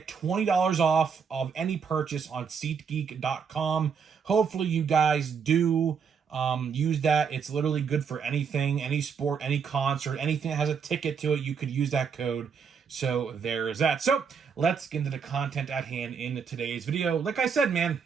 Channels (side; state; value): left; quieter; 6.4 dB